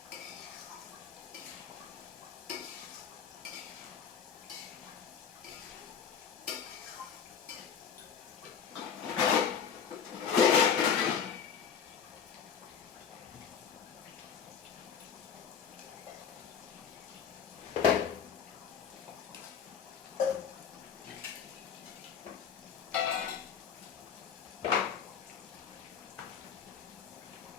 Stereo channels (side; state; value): right; quieter; 7.4 dB